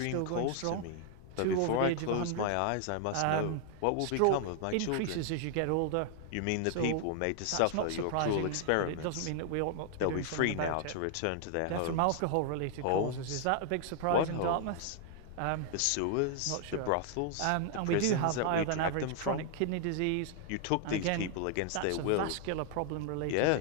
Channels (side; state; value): both; different; correlation 0.00